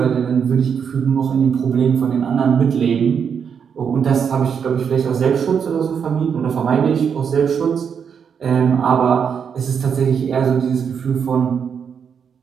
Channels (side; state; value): left; quieter; 7.1 dB